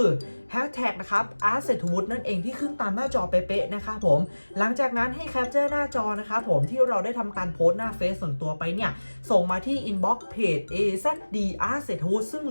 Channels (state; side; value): inverted; both; correlation -1.00